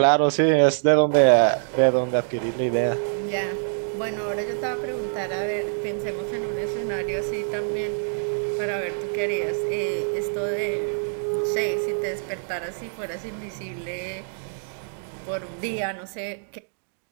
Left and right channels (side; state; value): left; silent; digital silence